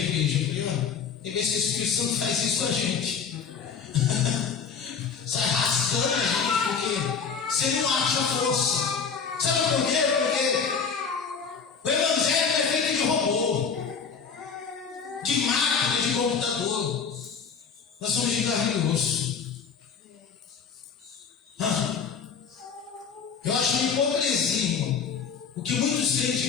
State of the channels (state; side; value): quieter; right; 6.1 dB